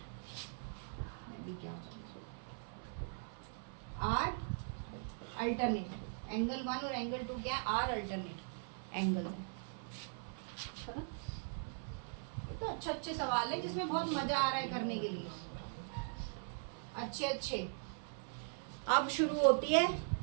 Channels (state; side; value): silent; left; 51 dB below the other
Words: क्या आर अल्टरनेट। एंगल 1 और एंगल 2 क्या है? Are alternate angle. है ना? ये तो अच्छे अच्छे सवाल है जिसमें बहुत मजा आ रहा है करने के लिए। अच्छे अच्छे। अब शुरू होती है।